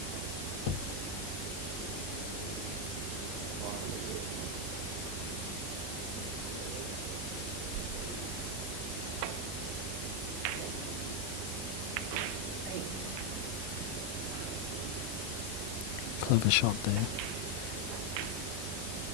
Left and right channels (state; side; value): normal; both; correlation 0.04